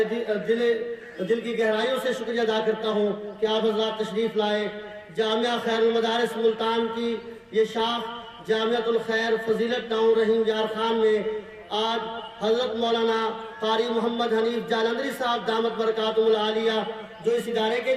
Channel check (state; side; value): identical; both; correlation 1.00